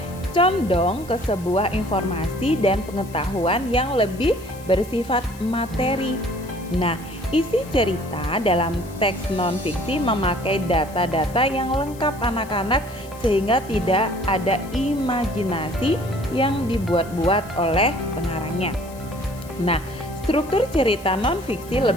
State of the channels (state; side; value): noise; left; hiss, 21 dB below the sound